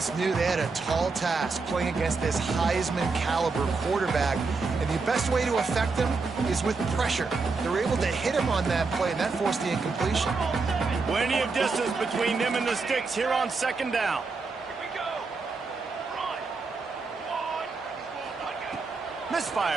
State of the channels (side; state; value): left; quieter; 4.3 dB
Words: knew they had a tall task playing against this Heisman caliber quarterback, and the best way to affect him is with pressure. They were able to hit him on that play, and that forced the incompletion. Plenty of distance between them and the sticks here on 2nd down.